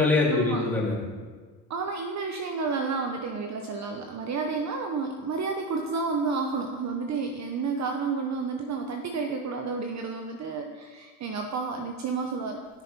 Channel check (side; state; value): both; normal; correlation 0.19